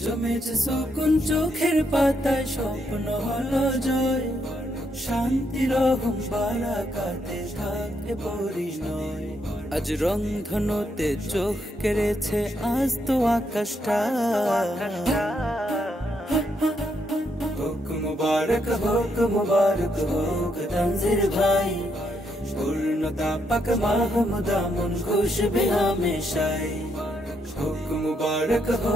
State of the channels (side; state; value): both; normal; correlation 0.77